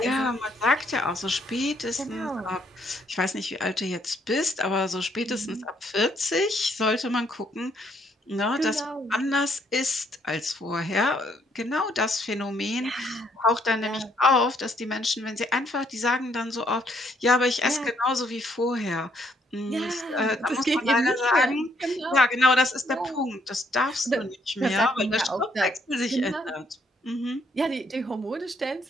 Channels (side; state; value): both; normal; correlation 0.70